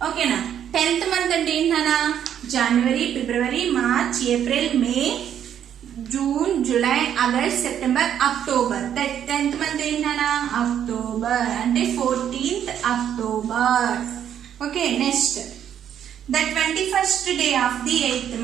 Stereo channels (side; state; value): left; quieter; 9.6 dB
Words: ఓకేనా? 10th మంత్ అంటే ఏంటన్నా? January, February, March, April, May, June, July, August, September, October. 10th month ఏంటన్నా? అక్టోబర్. అంటే 14th October. Okay. Next the 21st day of the 8th